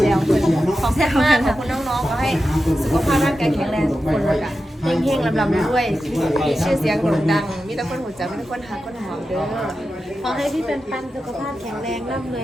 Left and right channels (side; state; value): both; normal; correlation 0.91